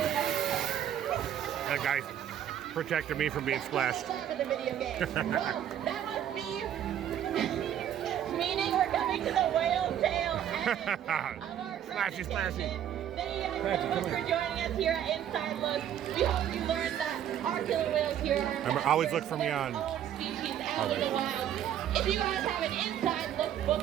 That guy's protected me from being splashed. For the video game. Well, that must be meaning we're coming to the whale tail end of our Splashy, splashy. Thank you guys so much for joining us here at Inside Look. We hope you learned that our killer whales here are Remember, always look for me on. own species out in the wild. If you guys have an Inside Look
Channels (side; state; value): left; quieter; 10.3 dB